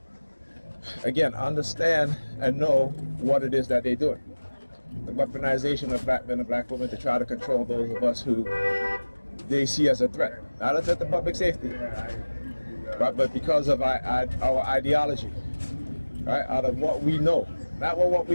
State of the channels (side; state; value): both; inverted; correlation -1.00